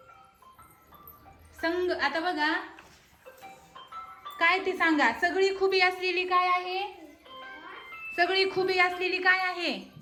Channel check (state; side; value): identical; both; correlation 1.00